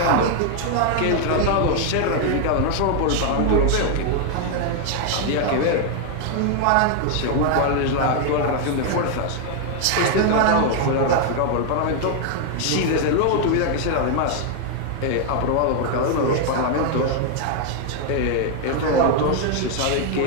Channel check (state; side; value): different; both; correlation 0.00